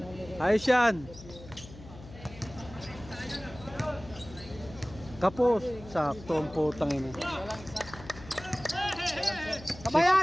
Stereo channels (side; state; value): left; noise; hum, 17 dB below the sound